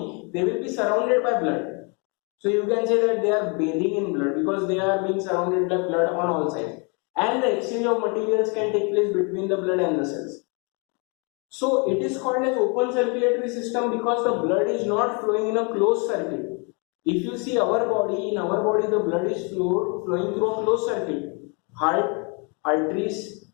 they will be surrounded by blood. So you can say that they are bathing in blood because they are being surrounded by blood on all sides, and the exchange of materials can take place between the blood and the cells. So it is called as open circulatory system because the blood is not flowing in a closed circuit. If you see our body, in our body the blood is flowing through a closed circuit. Heart, arteries,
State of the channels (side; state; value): right; quieter; 34.1 dB